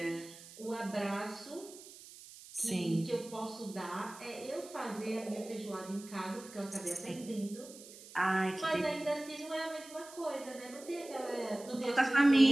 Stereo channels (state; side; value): noise; right; hiss, 17 dB below the sound